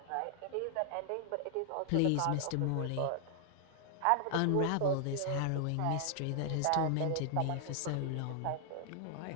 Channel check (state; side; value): different; both; correlation 0.00